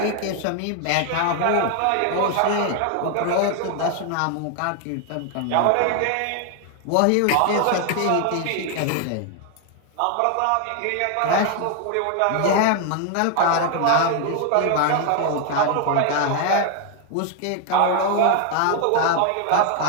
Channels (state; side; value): different; both; correlation 0.00